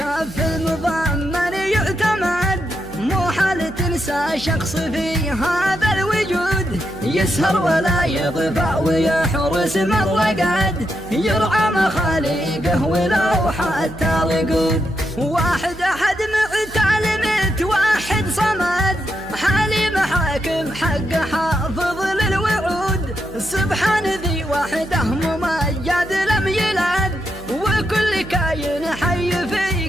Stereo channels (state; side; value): noise; right; hum, 17 dB below the sound